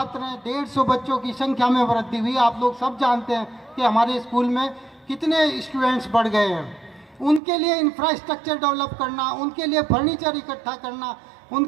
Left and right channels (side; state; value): left; drops out; at 7.4 s